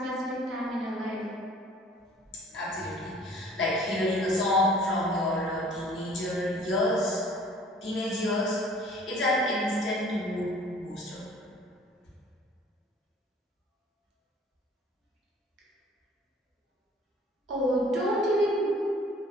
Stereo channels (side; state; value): both; normal; correlation 0.52